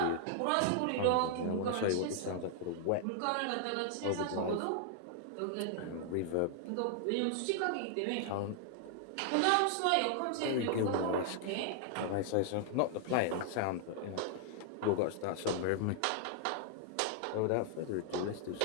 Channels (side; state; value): both; different; correlation -0.01